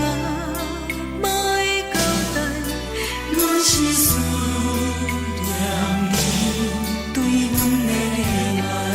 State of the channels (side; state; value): both; identical; correlation 1.00